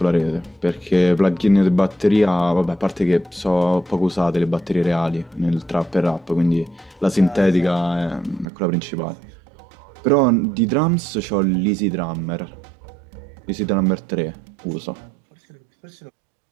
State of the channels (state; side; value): drops out; left; at 8.5 s